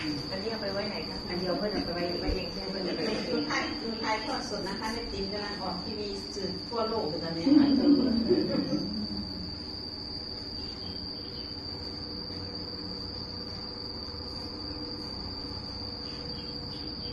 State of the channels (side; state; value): both; identical; correlation 1.00